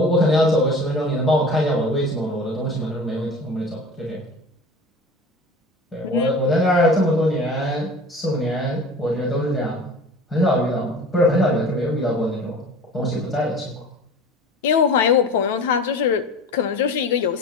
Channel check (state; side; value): normal; both; correlation 0.39